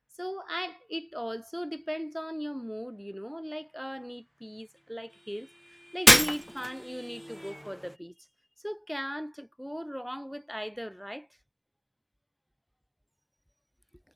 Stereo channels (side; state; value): both; identical; correlation 1.00